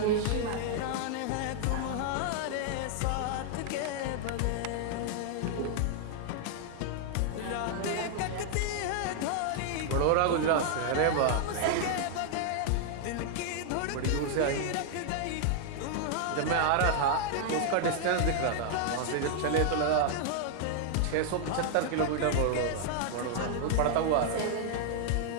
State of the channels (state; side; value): different; both; correlation 0.00